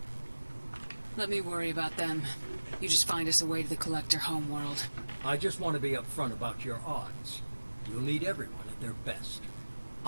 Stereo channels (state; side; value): inverted; both; correlation -1.00